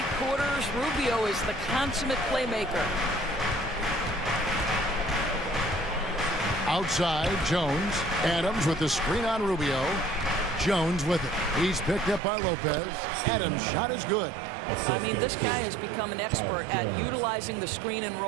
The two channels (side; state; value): left; drops out; at 12.2 s